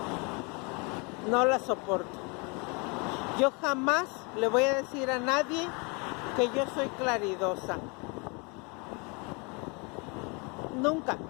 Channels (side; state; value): right; quieter; 31.2 dB